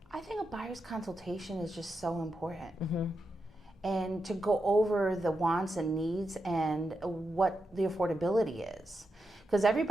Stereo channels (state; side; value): normal; both; correlation 0.87